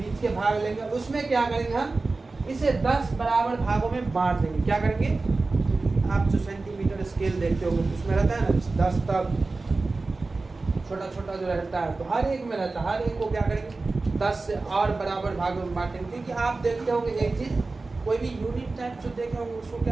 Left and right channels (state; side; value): quieter; left; 3.6 dB